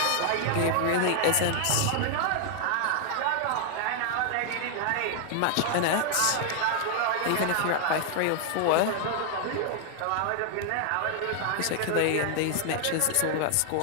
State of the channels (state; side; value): different; both; correlation 0.00